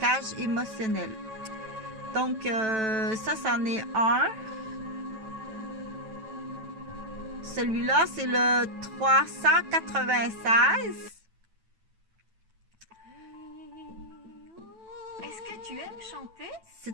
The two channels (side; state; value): left; late; 9.1 ms